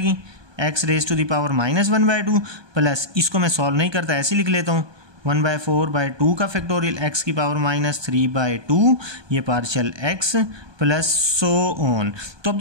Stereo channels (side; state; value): left; late; 1.2 ms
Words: x⁻⁻² प्लस इसको मैं सॉल्व नहीं करता, ऐसे लिख लेता हूँ 1/4/2 का फैक्टोरियल, x की पावर -3/2, ये partial x plus so on. तो अब